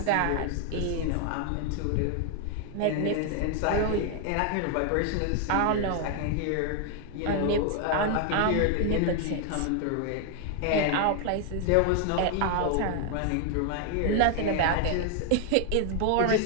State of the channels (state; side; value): different; both; correlation 0.00